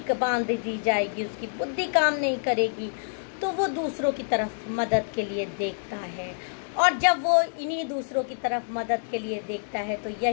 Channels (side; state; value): right; silent; digital silence